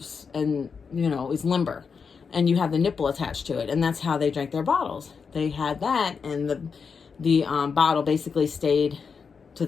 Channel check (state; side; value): quieter; right; 5.7 dB